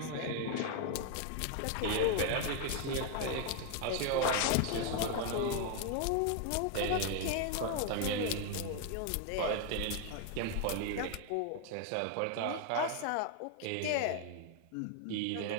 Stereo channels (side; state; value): both; different; correlation 0.00